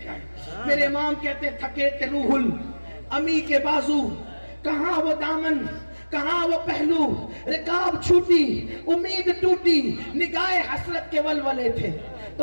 کیا ہے؟ میرے امام کہتے ہیں تھکے تے روح امی کے بازو، کہاں وہ دامن کہاں وہ پہلو، رکاب چھوٹی امید ٹوٹی، نگاہ حسرت کے ولولے تھے۔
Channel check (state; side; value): inverted; both; correlation -1.00